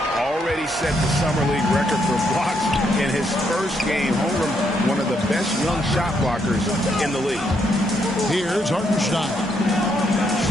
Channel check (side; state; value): both; normal; correlation 0.75